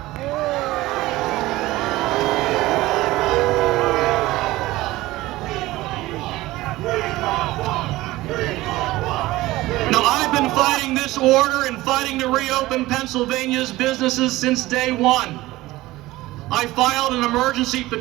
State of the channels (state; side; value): quieter; left; 18.1 dB